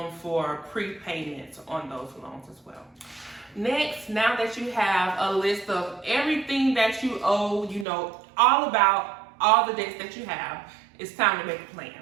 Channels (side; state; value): left; drops out; at 7.9 s